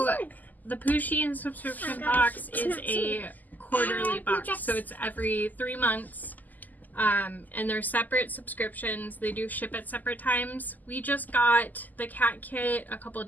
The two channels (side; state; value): right; late; 0.083 ms